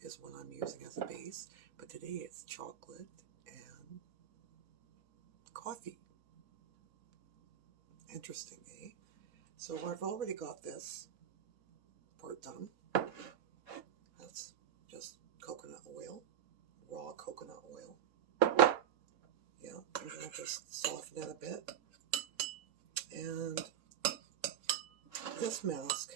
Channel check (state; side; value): quieter; left; 9.7 dB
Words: is what I'm using as a base, but today it's chocolate and coffee. Interesting, eh? So I've already got this part done. That's just coconut oil, raw coconut oil. Yeah, I'm going to just soften it a bit. And this